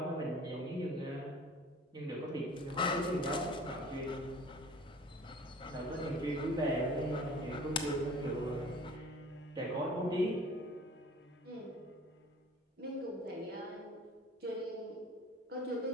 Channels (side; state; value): both; normal; correlation 0.46